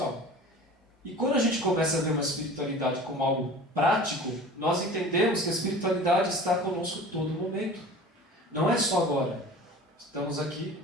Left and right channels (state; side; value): normal; both; correlation 0.39